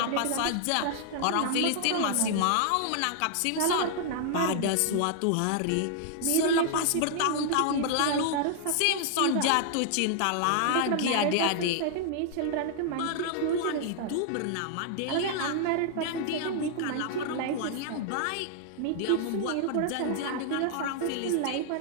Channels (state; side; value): different; both; correlation -0.01